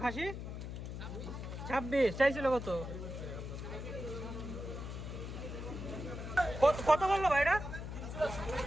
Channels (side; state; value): left; noise; hum, 7 dB below the sound